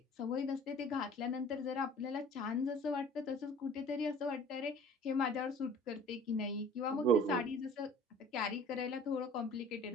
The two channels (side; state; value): both; normal; correlation 0.47